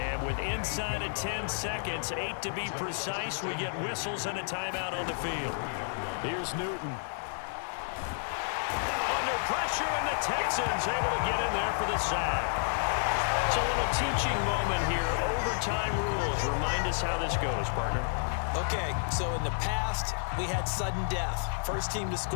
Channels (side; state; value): right; silent; digital silence